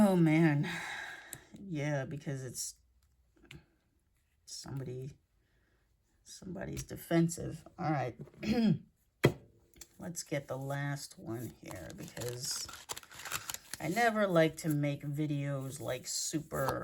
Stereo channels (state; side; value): identical; both; correlation 1.00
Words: man. Yeah, because it's somebody's defensive. All right. Let's get the last one here because I never like to make videos like